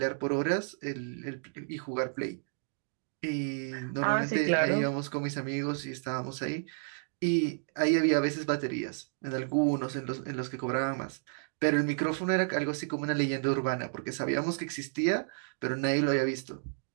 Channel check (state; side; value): silent; left; digital silence